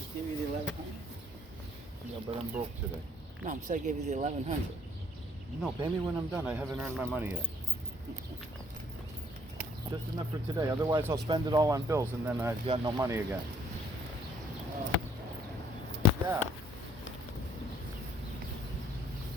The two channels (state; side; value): normal; both; correlation 0.63